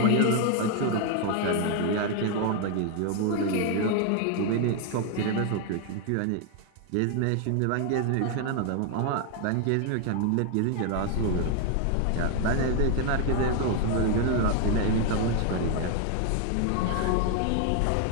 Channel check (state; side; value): different; both; correlation 0.00